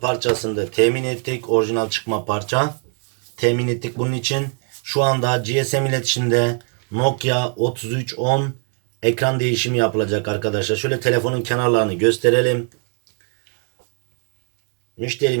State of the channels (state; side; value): quieter; left; 38.4 dB